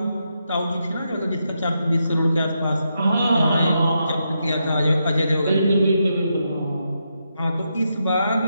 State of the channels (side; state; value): both; inverted; correlation -0.83